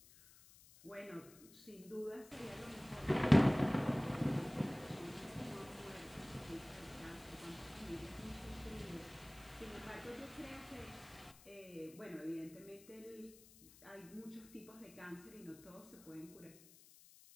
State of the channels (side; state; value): left; noise; hiss, 21 dB below the sound